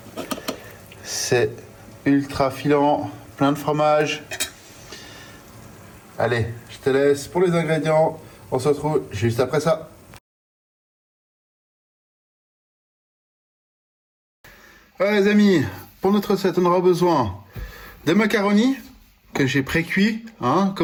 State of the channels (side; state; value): both; identical; correlation 1.00